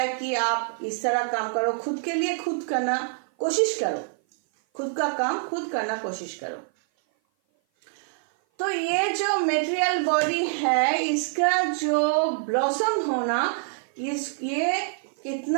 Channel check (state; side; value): silent; left; 56 dB below the other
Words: कि आप इस तरह काम करो, खुद के लिए खुद करना कोशिश करो, खुद का काम खुद करना कोशिश करो। तो ये जो मेटेरियल बॉडी है, इसका जो ब्लॉसम होना, ये